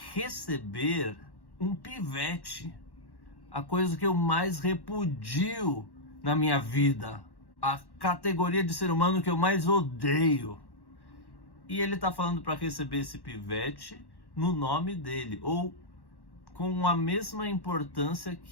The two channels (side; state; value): right; late; 1.1 ms